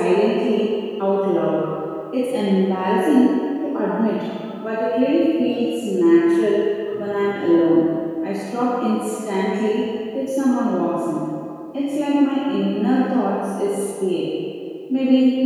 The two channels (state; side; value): identical; both; correlation 1.00